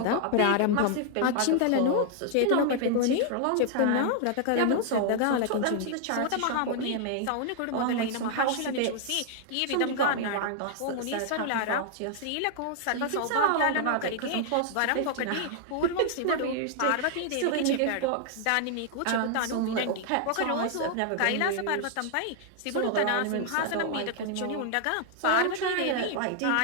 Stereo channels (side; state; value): both; different; correlation -0.01